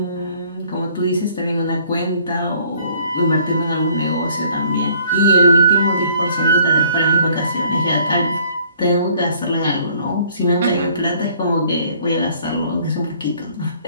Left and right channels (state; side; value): inverted; both; correlation -0.58